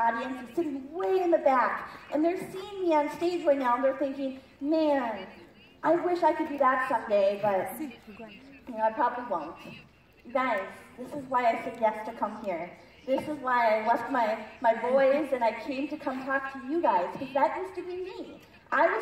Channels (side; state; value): both; identical; correlation 1.00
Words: is sitting way in the back, and they're seeing me on stage right now, and they're thinking, man, I wish I could do that someday, but I probably won't. You guys, this is why I said yes to come here. This is why I left my boys and I came to come talk to you guys, because that used to be me. I